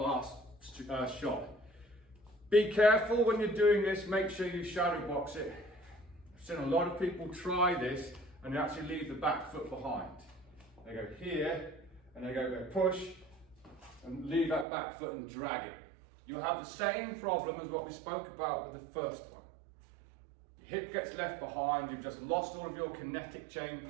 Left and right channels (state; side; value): drops out; left; at 14.7 s